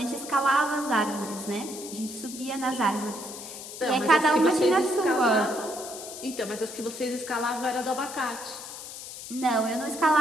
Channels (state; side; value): noise; left; hiss, 11 dB below the sound